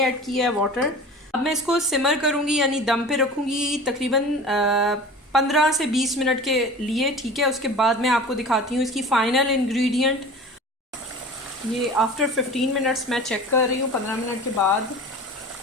ऐड किया है, वाटर। अब मैं इसको सिमर करूँगी यानी दम पे रखूँगी तकरीबन 15 से 20 मिनट के लिए, ठीक है। उसके बाद मैं आपको दिखाती हूँ इसकी फ़ाइनल इंग्रेडिएंट। ये आफ्टर 15 मिनट्स मैं चेक कर रही हूँ, 15 मिनट के बाद।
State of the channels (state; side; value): normal; both; correlation 0.38